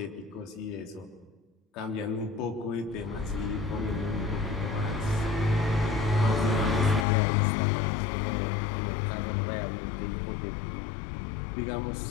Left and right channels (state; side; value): drops out; right; at 7.1 s